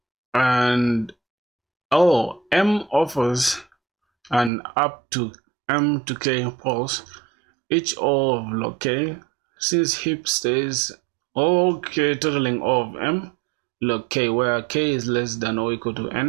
and m offers an up to m to k pulse, each O of log k, since heap stays k totaling O of m log k, where k is less than or equal to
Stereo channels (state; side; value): drops out; left; at 4.5 s